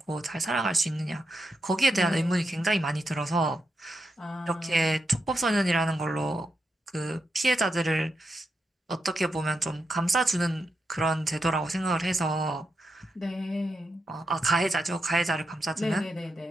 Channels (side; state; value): both; normal; correlation 0.86